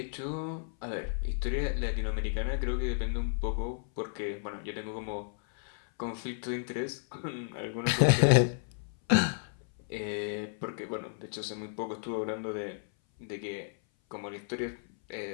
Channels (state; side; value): silent; right; 56 dB below the other